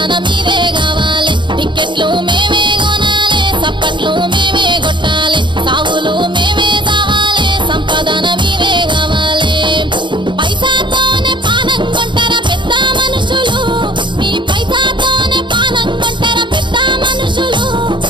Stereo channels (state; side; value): late; left; 0.23 ms